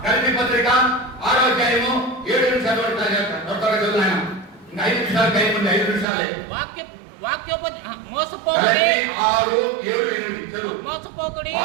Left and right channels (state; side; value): drops out; left; at 6.1 s